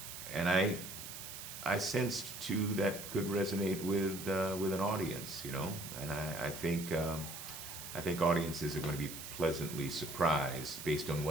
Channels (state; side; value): noise; right; hiss, 9 dB below the sound